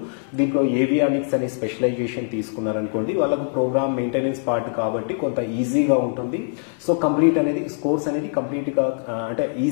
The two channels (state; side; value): silent; right; digital silence